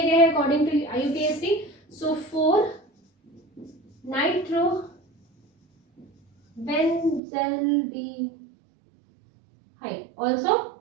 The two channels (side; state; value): left; drops out; at 7.2 s